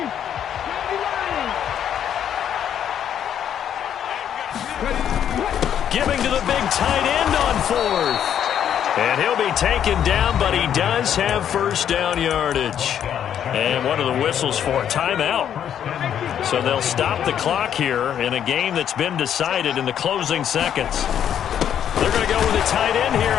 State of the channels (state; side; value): quieter; right; 9.5 dB